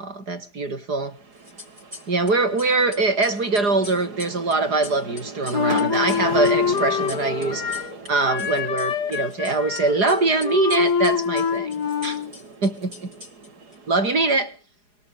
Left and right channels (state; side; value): late; left; 4.8 ms